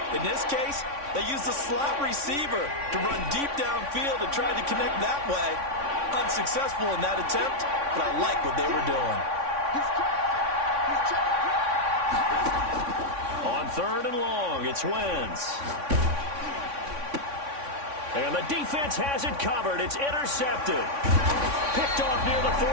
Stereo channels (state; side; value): late; left; 3.6 ms